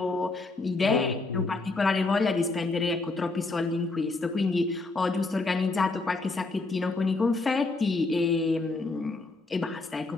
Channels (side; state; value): right; quieter; 3.4 dB